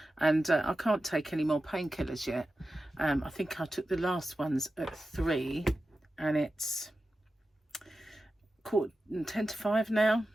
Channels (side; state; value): both; normal; correlation 0.92